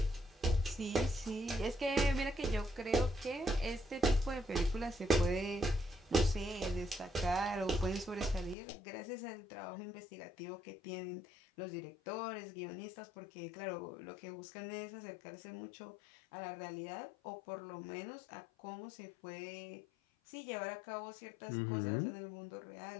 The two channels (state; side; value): drops out; right; at 8.6 s